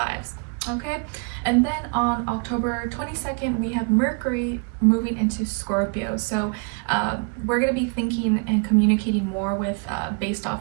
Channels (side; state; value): left; quieter; 35.8 dB